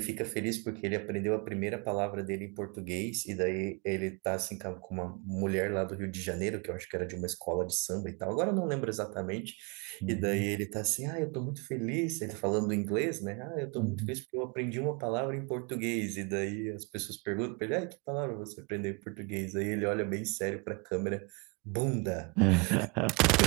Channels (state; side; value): quieter; left; 30.2 dB